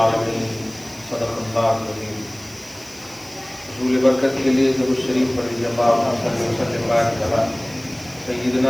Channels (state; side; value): noise; right; hiss, 21 dB below the sound